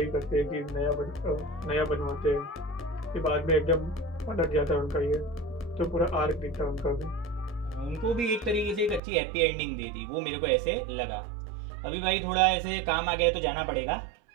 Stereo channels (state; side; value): drops out; left; at 9.0 s